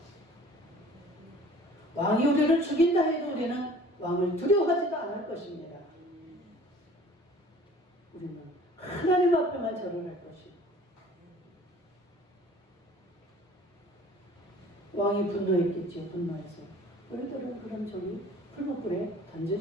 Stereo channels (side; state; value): both; normal; correlation 0.49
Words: 왕이 우리를 죽인다 해도 우리는 왕을 두려워하지도 않을 것입니다. 우리는 하나님 앞에만 절을 할 것입니다. 왕이 분노했겠지요. 분노해서 우리들은 그럼 저기 풀무불에